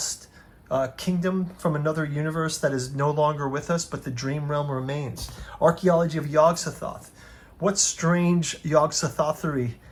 kingdom from another universe that is no longer with us, but the dream realm remains? Archaeology of Yog-Sothoth. What strange Yog-Sothothery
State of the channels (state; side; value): identical; both; correlation 1.00